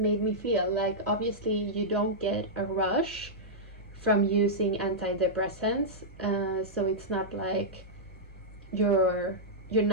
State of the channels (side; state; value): both; normal; correlation -0.10